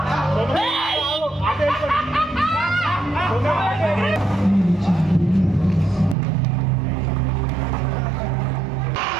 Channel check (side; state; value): left; drops out; at 6.2 s